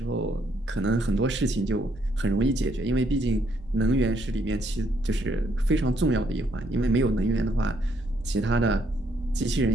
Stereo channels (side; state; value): both; normal; correlation 0.71